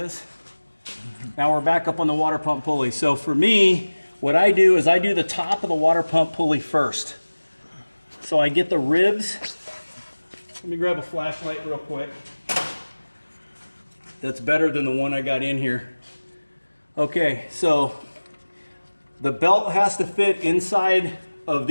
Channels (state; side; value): inverted; both; correlation -1.00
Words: Now we're back up on the water pump pulley. So for me, what I do is I do the top of the water pump pulley first. So I get the ribs. Let me grab a flashlight real quick. That's better than the one I got in here. Okay, so the belt has to fit inside of